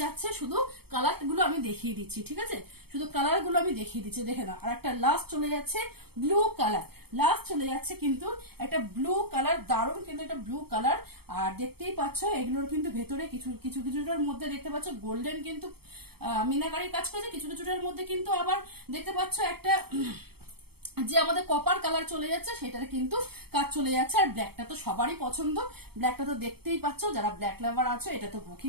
যাচ্ছে, শুধু কালার গুলো আমি দেখিয়ে দিচ্ছি, ঠিক আছে, শুধু কালার গুলো আমি দেখিয়ে দিচ্ছি। দেখে নাও আর একটা লাস্ট চলে যাচ্ছে ব্লু কালার, লাস্ট চলে যাচ্ছে কিন্তু একটা ব্লু কালার, দারুণ কিন্তু একটা ব্লু কালার। আর দেখতেই পাচ্ছ এগুলোর কিন্তু ভেতরে কিছু কিছু কিছুটার মধ্যে দেখতে পাচ্ছ গোল্ডেন কিন্তু মিনাকারি কাজ করেছে, কিছু কিছুটার মধ্যে কিন্তু আবার দেখতে পাচ্ছ একটা যে আমাদের কপার কালার চলে যাচ্ছে সেটাতে কিন্তু কাজ চলে যাচ্ছে। আর ব্ল্যাকটা তো সবারই পছন্দ, ব্ল্যাকটা তো দেখতেই পাচ্ছ, যারা ব্ল্যাক লাভার আছো এটা তো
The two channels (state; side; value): late; left; 0.96 ms